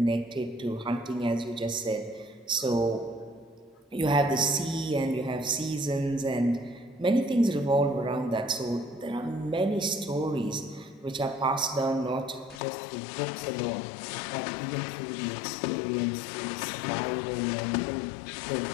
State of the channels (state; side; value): drops out; right; at 12.6 s